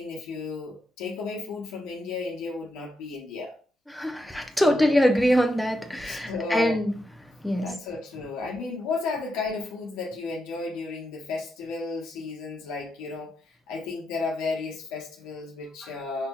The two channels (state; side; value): normal; both; correlation 0.84